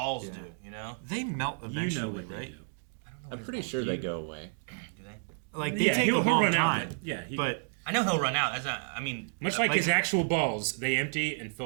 Yeah. do, you know? They melt eventually, You know what they right? do. I don't know I'm what pretty his sure balls they do. go away. Do they? Like they Yeah, take he'll a long run out, time. but- yeah, he- but I know he'll run out. That's not, I mean, Much like his actual balls, they empty and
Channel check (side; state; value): left; silent; digital silence